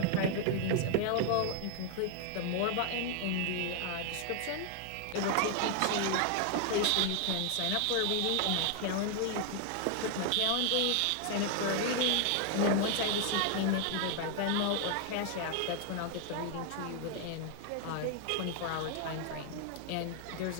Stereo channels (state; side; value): different; both; correlation 0.00